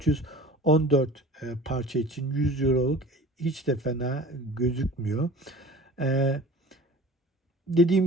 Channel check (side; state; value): both; normal; correlation 0.42